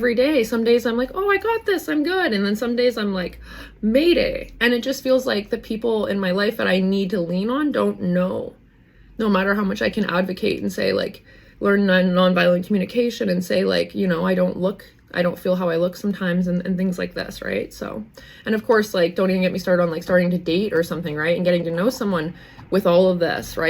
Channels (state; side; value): identical; both; correlation 1.00